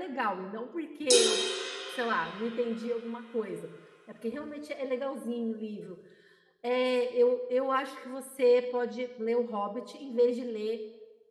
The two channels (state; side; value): identical; both; correlation 1.00